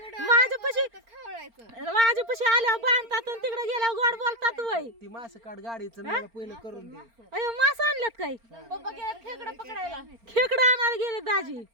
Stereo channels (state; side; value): late; left; 4.4 ms